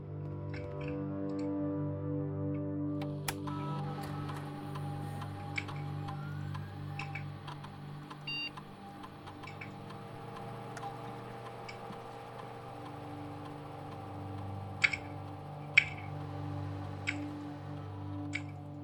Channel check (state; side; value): identical; both; correlation 1.00